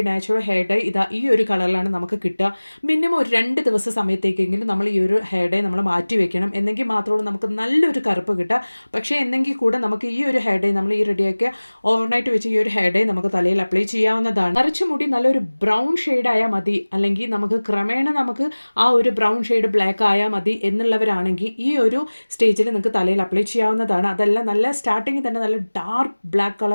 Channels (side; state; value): both; inverted; correlation -1.00